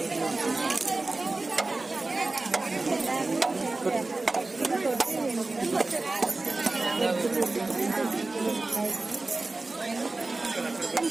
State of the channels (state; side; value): quieter; left; 3.3 dB